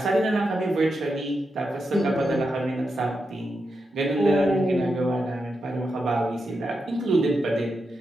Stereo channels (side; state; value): both; normal; correlation 0.86